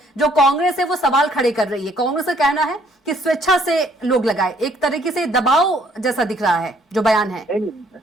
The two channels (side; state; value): both; normal; correlation 0.64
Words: जो कांग्रेस है वो सवाल खड़े कर रही है। कांग्रेस का कहना है कि स्वेच्छा से लोग लगाए, एक तरीके से दबाव जैसा दिख रहा है जो बयान है।